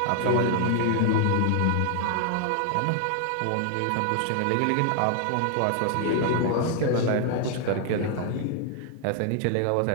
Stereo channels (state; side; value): different; both; correlation 0.00